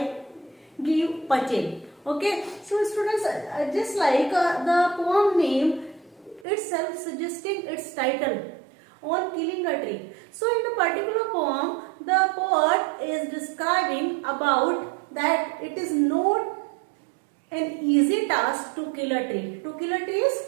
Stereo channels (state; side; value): drops out; left; at 6.5 s